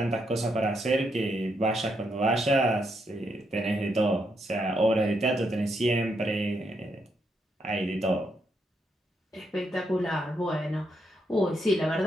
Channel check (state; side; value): normal; both; correlation 0.79